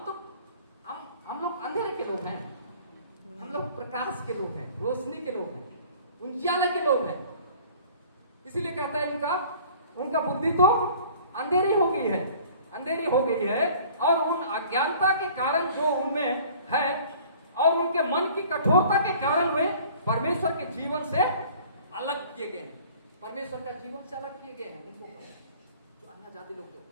हम लोग अंधेरे के लोग हैं, हम लोग प्रकाश के लोग हैं, रोशनी के लोग हैं, उजियाले के लोग हैं। इसीलिए कहता है उनका बुद्धि तो अंधेरी हो गई है, और उन अज्ञानता के कारण जो उनमें है और उनके मन की कठोरता के कारण वे परमेश्वर के जीवन से अलग किए गए हैं। परमेश्वर का जीवन से अलग किए गए हैं उनको, जो अन्य जाति लोग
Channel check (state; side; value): inverted; both; correlation -0.49